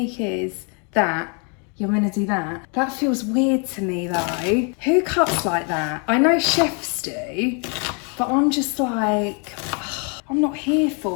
is that you're gonna do that. That feels weird to me though. Who cuts like that? I know chefs do, but I'm just like, I'm not here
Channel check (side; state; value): right; quieter; 36.9 dB